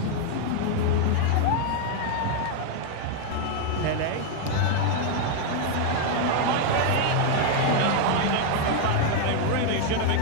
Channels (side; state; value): both; different; correlation 0.01